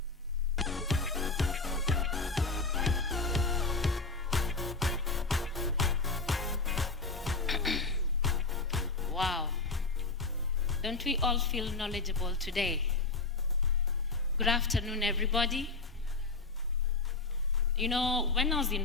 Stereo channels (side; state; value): right; quieter; 3.8 dB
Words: Wow, don't we all feel knowledgeable today? Good afternoon, everybody. You know, when I was